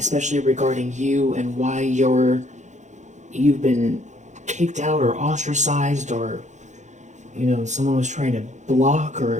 regarding you and why you've been kicked out or ostracized, or someone was trying to block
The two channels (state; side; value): late; left; 0.35 ms